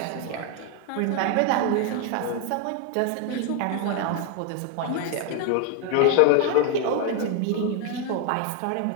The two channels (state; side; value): different; both; correlation 0.01